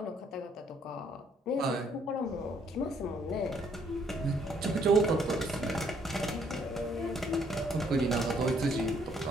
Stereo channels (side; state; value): both; normal; correlation 0.68